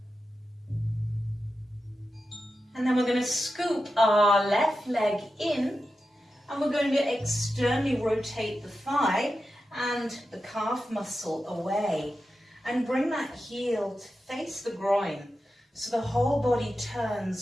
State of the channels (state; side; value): normal; both; correlation 0.91